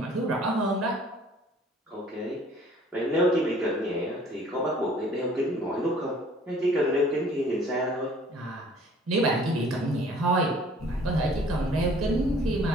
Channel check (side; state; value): both; normal; correlation 0.54